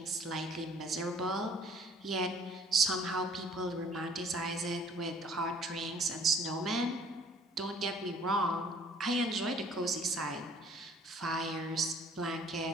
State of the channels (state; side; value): normal; both; correlation 0.56